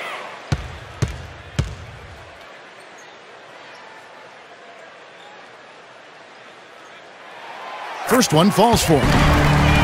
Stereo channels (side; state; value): both; identical; correlation 1.00